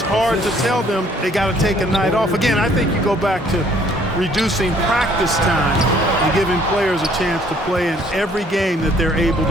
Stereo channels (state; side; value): normal; both; correlation 0.61